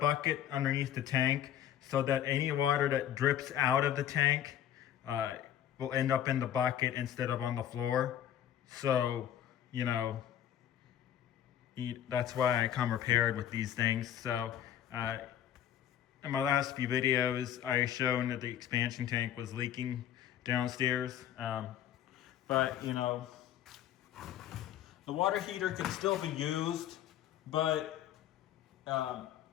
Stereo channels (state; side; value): quieter; right; 10.7 dB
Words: underneath the tank so that any water that drips out of the tank will end up in the bucket instead of on the floor. So, you know, that's why I come prepared with these things. So, in my last few videos, I shown that the expansion tank was leaking downstairs. But, you know, the water heater can still be used, but